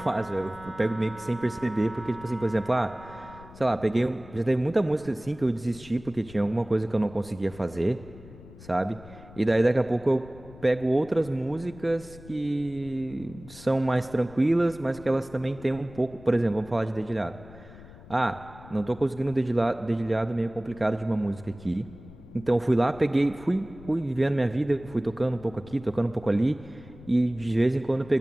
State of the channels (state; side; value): noise; left; rumble, 19 dB below the sound